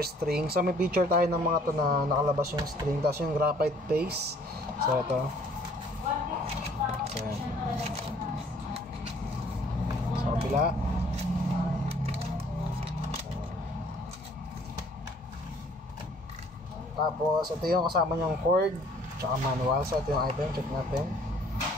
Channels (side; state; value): both; normal; correlation 0.58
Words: string. So may picture tayo ng mga to na nakalabas yung string. Tapos yung graphite paste. So ito. So yan. So kabila. Tapos, ito yung kasama niyang cord tsaka manual. So, ito yung item. Check natin.